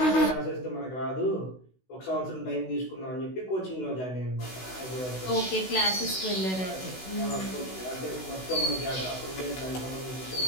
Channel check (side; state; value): right; late; 16 ms